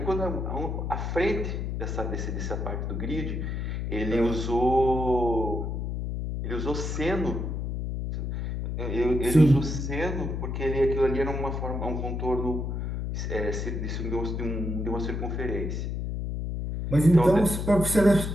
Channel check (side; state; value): left; noise; hum, 3 dB below the sound